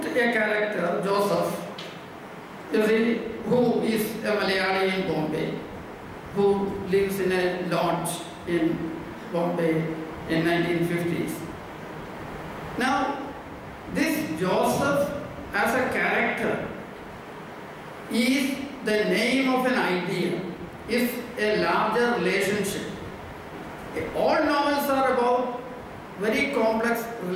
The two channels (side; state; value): both; identical; correlation 1.00